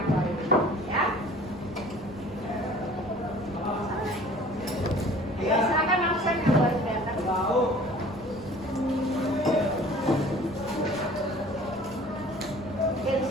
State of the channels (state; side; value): normal; both; correlation 0.48